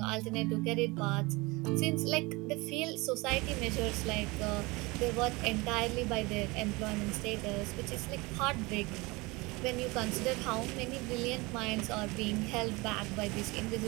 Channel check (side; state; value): left; quieter; 24.3 dB